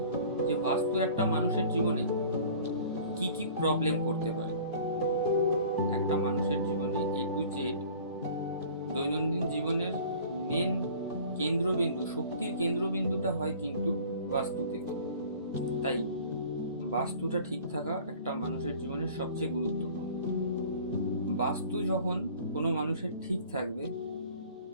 যে বাস্তু একটা মানুষের জীবনে কি কি প্রবলেম করতে পারে। একটা মানুষের জীবনে A to Z দৈনন্দিন জীবনের মেন কেন্দ্রবিন্দু, শক্তির কেন্দ্রবিন্দুটা হয় কিন্তু বাস্তু থেকে। তাই বাস্তুটা ঠিক থাকা একটা মানুষের জীবনের সবচেয়ে গুরুত্বপূর্ণ। বাস্তু যখন কোনো মানুষের ঠিক থাকবে,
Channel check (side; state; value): both; inverted; correlation -0.47